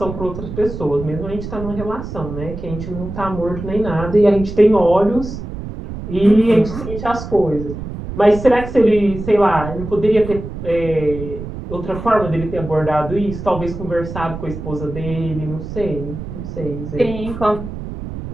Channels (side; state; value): right; noise; rumble, 9 dB below the sound